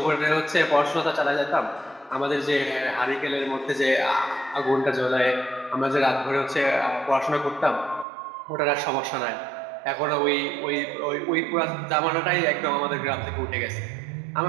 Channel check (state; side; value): drops out; left; at 8.1 s